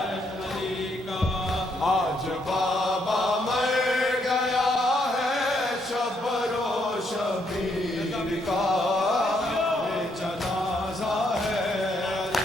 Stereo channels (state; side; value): normal; both; correlation 0.74